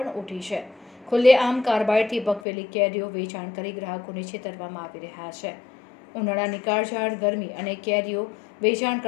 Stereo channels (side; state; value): right; drops out; at 2.4 s